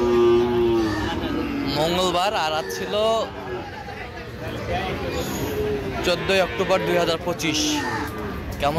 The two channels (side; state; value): both; identical; correlation 1.00